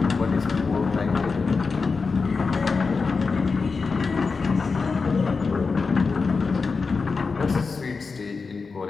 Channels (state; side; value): quieter; right; 4.6 dB